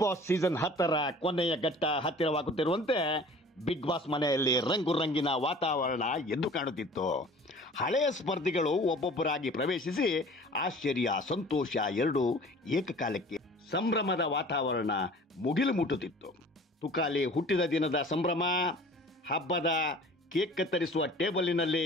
ಬಾಸ್ ಸೀಸನ್ 10ರ ಕೊನೆಯ ಘಟ್ಟ ಹತ್ತಿರವಾಗುತ್ತಿರುವಂತೆ ಬಿಗ್ ಬಾಸ್ ಮನೆಯಲ್ಲಿ ರಂಗು ರಂಗಿನ ವಾತಾವರಣ ಎದ್ದು ಕಾಣುತ್ತಿತ್ತು. ಹಳೆಯ ಸ್ಪರ್ಧಿಗಳು ಒಬ್ಬೊಬ್ಬರಾಗಿ ಪ್ರವೇಶಿಸಿ ಆಶ್ಚರ್ಯ, ಸಂತೋಷ ಎರಡೂ ಏಕಕಾಲಕ್ಕೆ ಸಂಭ್ರಮದ ವಾತಾವರಣ ಮುಗಿಲು ಮುಟ್ಟುತ್ತಿತ್ತು. ತುಕಾಲಿ ಹುಟ್ಟಿದ ದಿನದ ಸಂಭ್ರಮ, ಹಬ್ಬದ ಕೇಕ್ ಕತ್ತರಿಸುವ ಟೇಬಲಿನಲ್ಲಿ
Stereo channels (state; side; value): normal; both; correlation 0.46